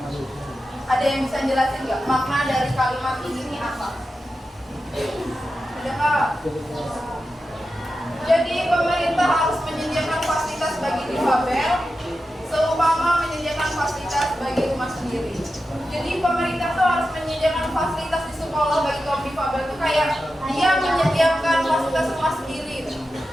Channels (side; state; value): both; normal; correlation 0.91